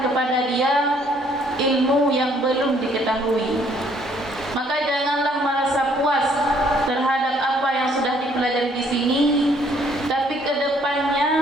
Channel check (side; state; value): both; normal; correlation 0.64